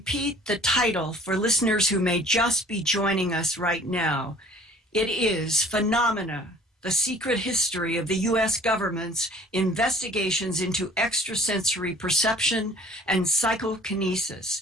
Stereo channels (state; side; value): normal; both; correlation 0.51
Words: the title for listeners who may just be joining us right now. It is Phenomena, the Secret History of the U.S. Government's Investigations into Extrasensory Perception and